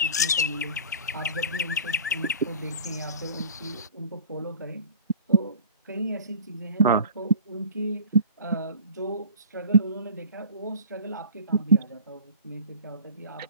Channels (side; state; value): both; inverted; correlation -0.43